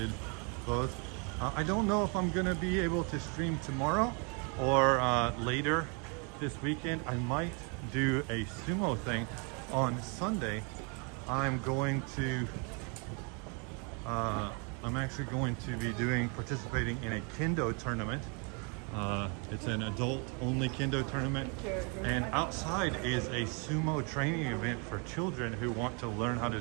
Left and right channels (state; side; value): quieter; left; 35.2 dB